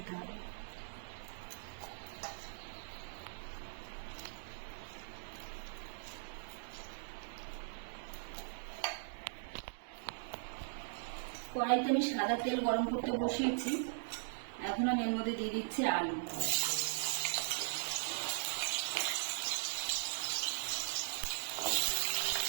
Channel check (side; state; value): left; silent; digital silence